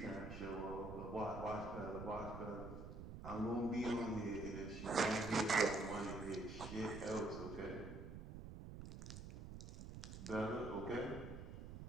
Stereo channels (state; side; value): noise; right; rumble, 9 dB below the sound